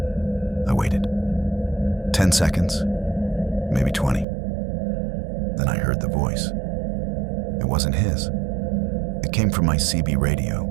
I waited. 10 seconds, maybe 20. Then I heard the voice. It wasn't his. It came from my CB radio.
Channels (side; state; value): left; drops out; at 4.2 s